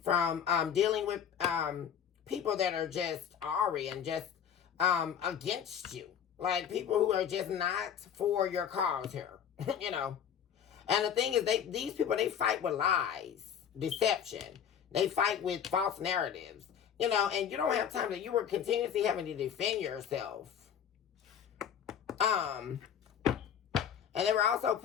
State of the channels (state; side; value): quieter; right; 8.5 dB